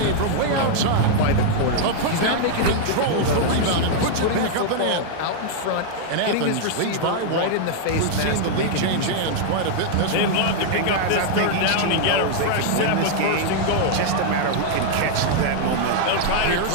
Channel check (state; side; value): different; both; correlation -0.01